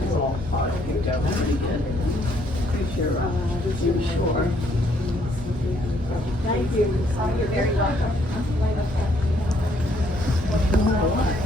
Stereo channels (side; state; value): both; normal; correlation 0.68